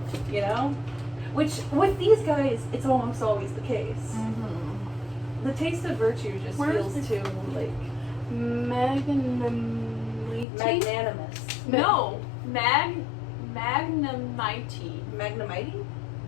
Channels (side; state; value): right; drops out; at 10.5 s